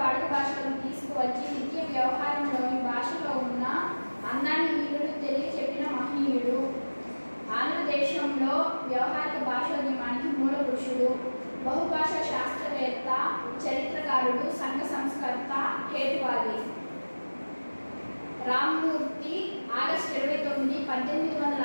వాడుక భాషలోకి తీసుకువచ్చి నిత్య వ్యవహారంలోని భాషలో ఉన్న అందాన్ని వీరుడు తెలియచెప్పిన మహనీయుడు. ఆంధ్రదేశంలో వ్యవహారిక భాషోద్యమానికి మూల పురుషుడు, బహుభాషా శాస్త్రవేత్త, చరిత్రకారుడు, సంఘ సంస్కర్త, హేతువాది. రామమూర్తి ఆగస్టు 29,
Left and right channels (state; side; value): inverted; both; correlation -1.00